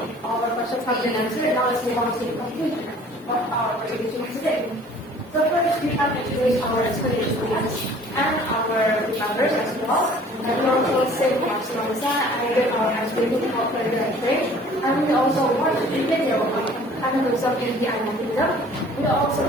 All our questions have been answered. Now let's move on to the conclusion of our presentation today. So first, we have introduced our explanation and our members as well. And we also say Barcelona and did our explanation about further and trade. And we also watched the video on cannibalism in the animal kingdom. We also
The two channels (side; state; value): both; normal; correlation 0.51